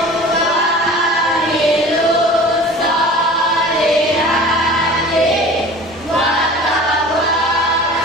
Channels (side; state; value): both; normal; correlation 0.41